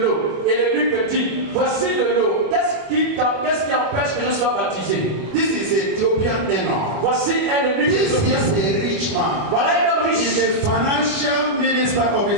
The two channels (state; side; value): late; left; 25 ms